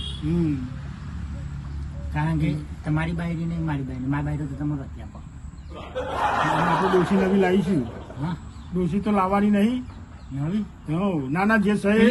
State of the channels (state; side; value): identical; both; correlation 1.00